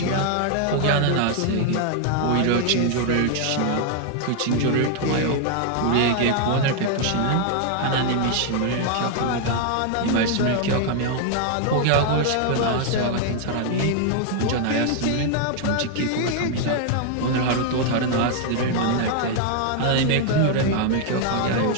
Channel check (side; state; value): both; different; correlation 0.00